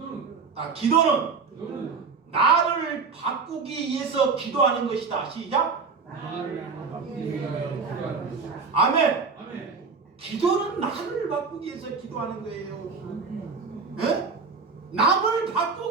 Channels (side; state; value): left; quieter; 4.8 dB